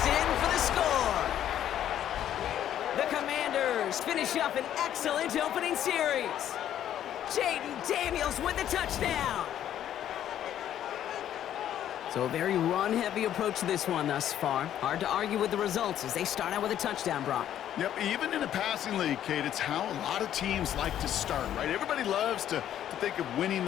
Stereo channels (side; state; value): right; quieter; 10.9 dB